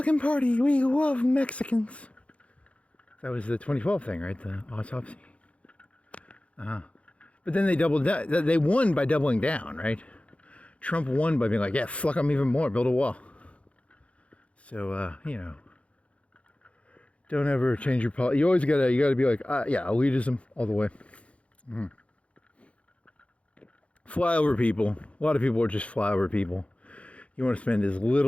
Party. We love Mexicans. That was the 2012 thing, right? The autopsy. But then they doubled down. They won by doubling down, right? Trump won by being like, yeah, fuck them even more. Build a wall. So, you know, don't ever change your policy. You always gotta be like, yeah, elitism all the way. Fly over people. A lot of people are just flyover people. You want to spend as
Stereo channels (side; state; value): right; late; 0.063 ms